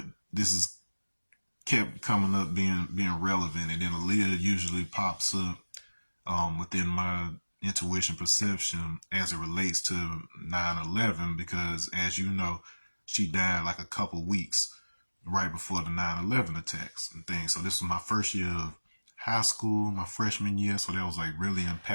this is kept coming up being relevant, and then Aaliyah usually pops up within my intuition perception as it relates to 9/11, because as you know, she died like a couple weeks right before the 9/11 attacks and things. So this was my first year of high school, my freshman year, so that was like really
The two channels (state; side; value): inverted; both; correlation -1.00